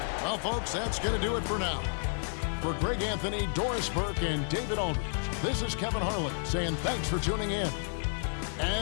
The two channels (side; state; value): right; silent; digital silence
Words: Well, folks, that's going to do it for now. For Greg Anthony, Doris Burke, and David Aldridge, this is Kevin Harlan saying thanks for tuning in.